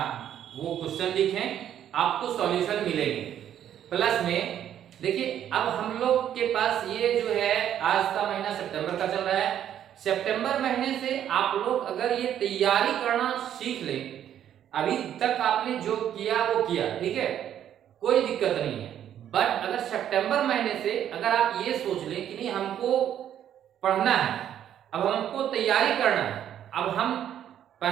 वो क्वेश्चन लिखें, आपको सॉल्यूशन मिलेंगे। प्लस में देखिए, अब हम लोग के पास ये जो है, आज का महीना सितंबर का चल रहा है। सितंबर महीने से आप लोग अगर ये तैयारी करना सीख लें, अभी तक आपने जो किया वो किया, ठीक है, कोई दिक्कत नहीं है। बट अगर सितंबर महीने से अगर आप ये सोच लें कि नहीं, हमको पढ़ना है, अब हमको तैयारी करना है, अब हम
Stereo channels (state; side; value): quieter; left; 10.3 dB